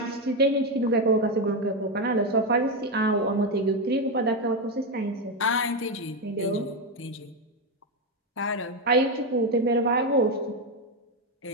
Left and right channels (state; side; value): normal; both; correlation 0.09